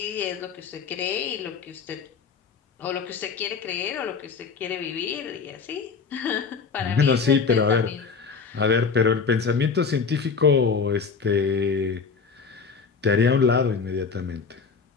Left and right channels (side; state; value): right; quieter; 5.3 dB